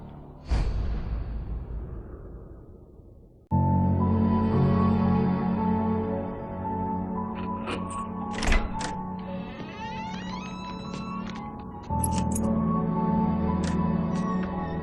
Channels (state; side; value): identical; both; correlation 1.00